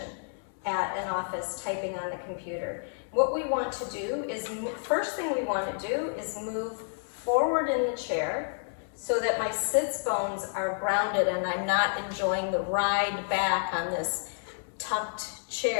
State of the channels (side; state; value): right; silent; digital silence